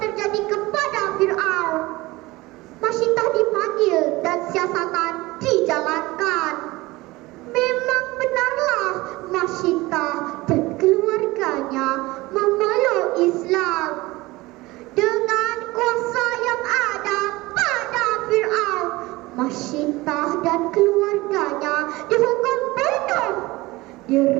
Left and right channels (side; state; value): left; quieter; 20.6 dB